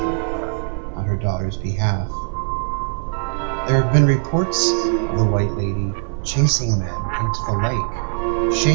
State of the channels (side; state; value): left; silent; 63 dB below the other